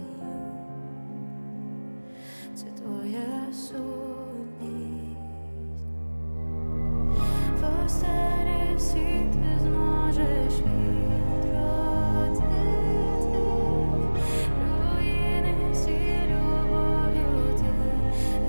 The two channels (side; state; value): both; inverted; correlation -1.00